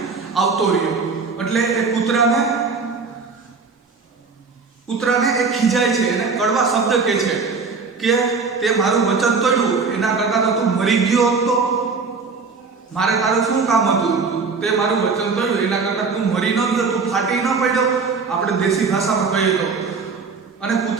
આવતો રહ્યો, એટલે એ કૂતરાને એ ખીજાય છે, એને કડવા શબ્દ કહે છે કે તે મારું વચન તોડ્યું, એના કરતાં તો તું મરી ગયો હતો, મારે તારું શું કામ હતું, તે મારું વચન તોડ્યું, એના કરતાં તું મરી ન ગયો, તું ફાટી ન પડ્યો, આપણે દેશી ભાષામાં કહીએ તો. અને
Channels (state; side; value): quieter; left; 4.7 dB